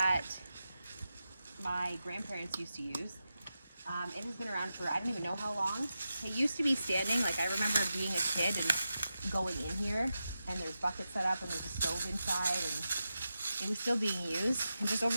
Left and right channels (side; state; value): both; inverted; correlation -0.90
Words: my grandparents used to use. It has been around for I don't even know how long. It used to be standing, like I remember being a kid and going in here, and there's buckets set up and there's a stove inside, and it was still being used. And just over